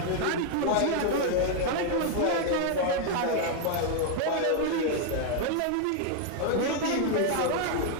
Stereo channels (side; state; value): both; different; correlation 0.00